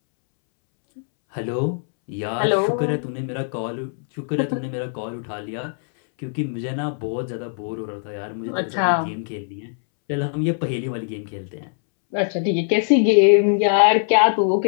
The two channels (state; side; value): silent; right; 64 dB below the other